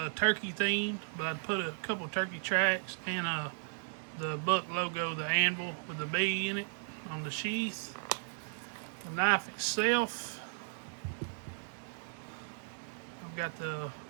turkey themed, but I put a couple turkey tracks and the buck logo, the anvil with the bee in it on the sheath. The knife itself, I've got the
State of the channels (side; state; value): left; silent; digital silence